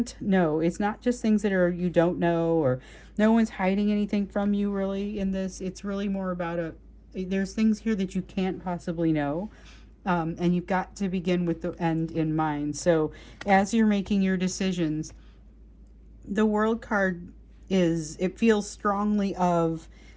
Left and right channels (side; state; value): both; identical; correlation 1.00